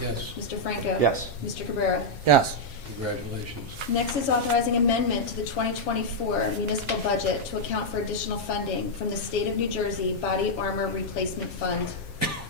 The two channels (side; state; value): right; late; 7.4 ms